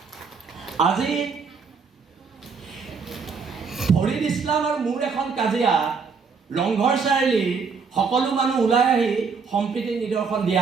আজি ফৰিদ ইছলাম আৰু মোৰ এখন কাজিয়া ৰংঘৰ চাৰিআলি সকলো মানুহ ওলাই আহি সম্প্ৰীতি নিদৰ্শন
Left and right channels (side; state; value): left; quieter; 5.3 dB